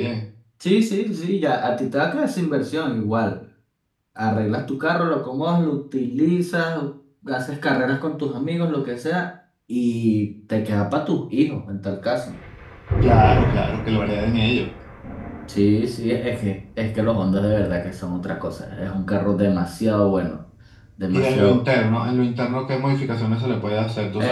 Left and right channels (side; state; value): both; identical; correlation 1.00